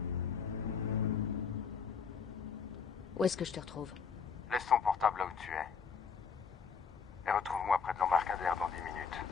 Où est-ce que je te retrouve? Laisse ton portable là où tu es. Et retrouve-moi près de l'embarcadère dans 10 minutes.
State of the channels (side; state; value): right; quieter; 6.0 dB